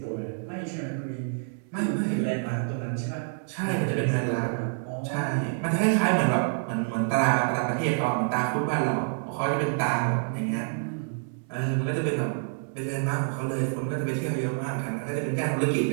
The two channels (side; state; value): left; silent; 60 dB below the other